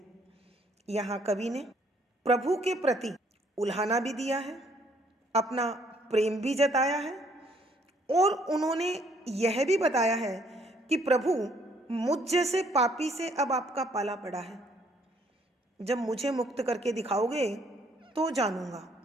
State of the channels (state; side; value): normal; both; correlation 0.65